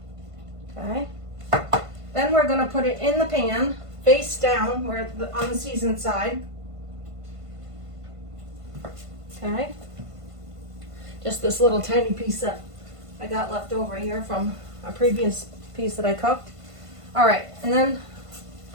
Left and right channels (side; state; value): left; late; 1.5 ms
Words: Okay. Then we're gonna put it in the pan, face down, where on the seasoned side. Okay. Just this little tiny piece that I got left over here from a previous piece that I cooked. All right, and then